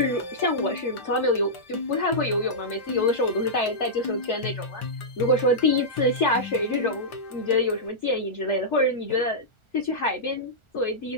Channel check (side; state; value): right; late; 1.4 ms